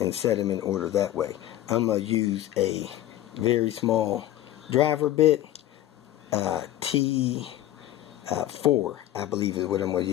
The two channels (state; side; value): quieter; right; 13.5 dB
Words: set them in order that way. I'm going to use a very small driver bit, T4, I believe is what I'm going to